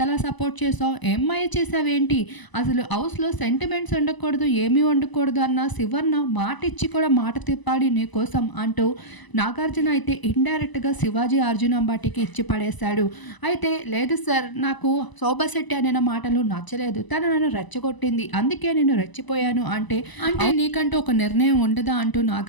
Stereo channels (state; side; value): late; right; 1.0 ms